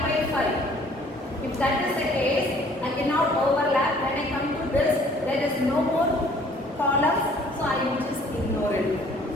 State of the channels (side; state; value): both; normal; correlation 0.57